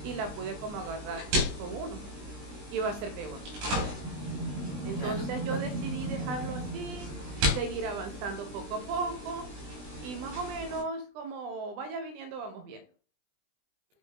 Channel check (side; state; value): left; late; 20 ms